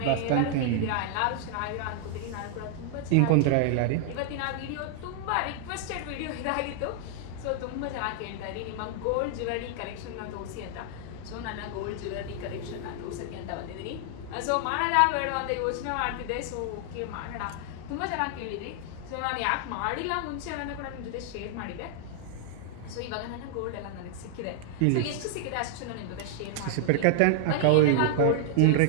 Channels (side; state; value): both; different; correlation -0.01